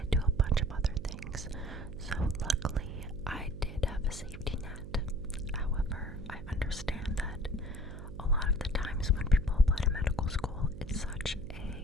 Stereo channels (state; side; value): noise; right; hum, 11 dB below the sound